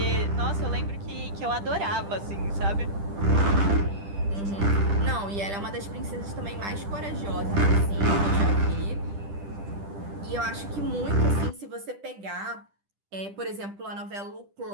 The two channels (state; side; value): late; left; 10 ms